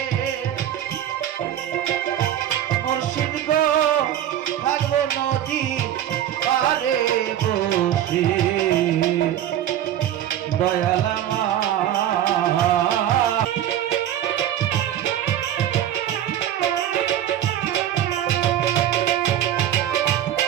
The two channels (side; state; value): left; quieter; 11.3 dB